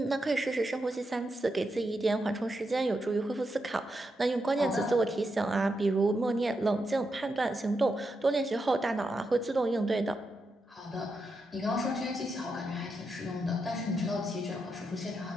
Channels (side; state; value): both; normal; correlation 0.85